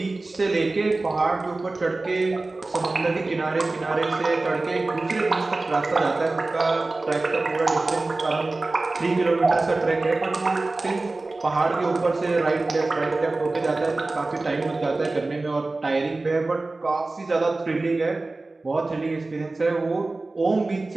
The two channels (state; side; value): quieter; left; 3.2 dB